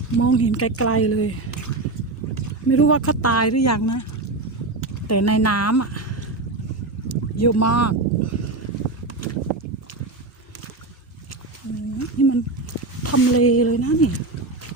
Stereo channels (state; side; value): quieter; left; 3.2 dB